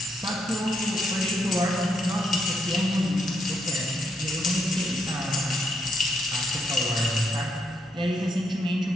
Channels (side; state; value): both; normal; correlation 0.77